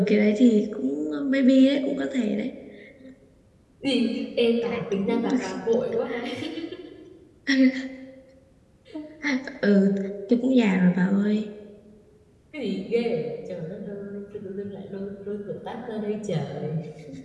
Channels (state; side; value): identical; both; correlation 1.00